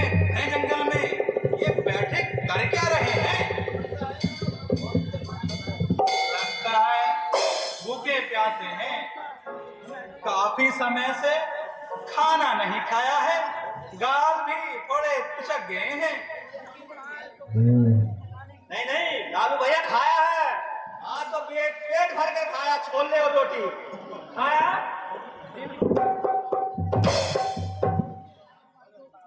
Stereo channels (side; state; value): both; identical; correlation 1.00